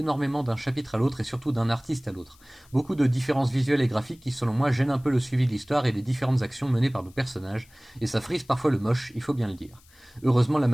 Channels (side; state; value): left; noise; hiss, 28 dB below the sound